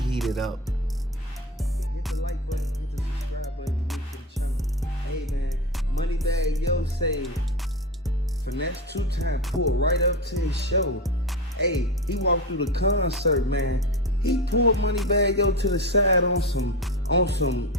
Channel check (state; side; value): normal; both; correlation 0.23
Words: up. Hit the like button, hit the subscribe button, new to the channel. Hey man, Moneybagg Yo say, finesse 2 times, pull right up to his show. Hey, he walked through the concert, man. He pulled Moneybagg Yo to the side on some